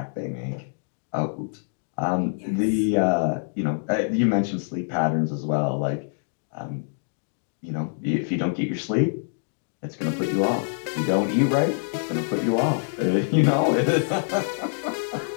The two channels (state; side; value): silent; right; digital silence